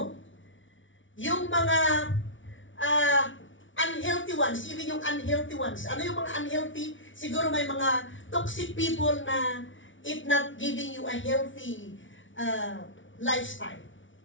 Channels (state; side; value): late; right; 0.56 ms